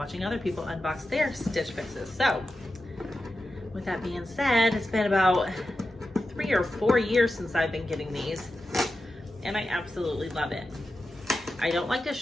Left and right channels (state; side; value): normal; both; correlation 0.91